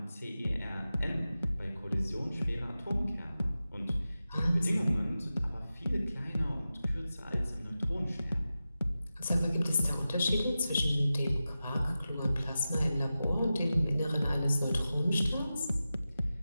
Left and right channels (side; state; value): both; inverted; correlation -0.93